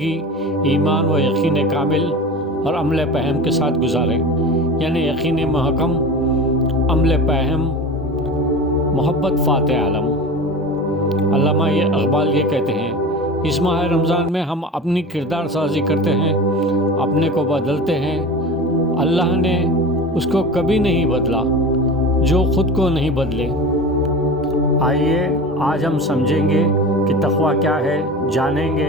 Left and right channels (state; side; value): normal; both; correlation 0.32